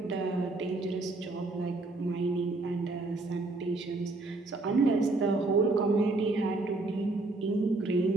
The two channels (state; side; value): quieter; left; 3.2 dB